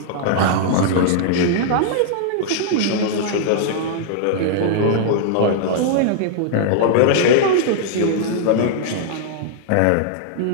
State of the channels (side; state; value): both; different; correlation -0.01